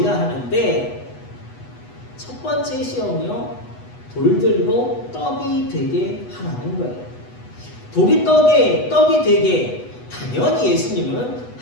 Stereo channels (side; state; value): right; late; 8.1 ms